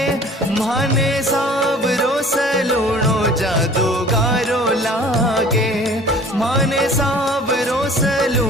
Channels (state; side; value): normal; both; correlation 0.48